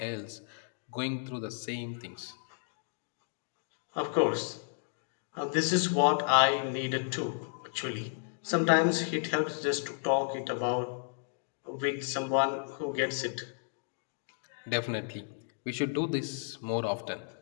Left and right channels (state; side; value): silent; right; digital silence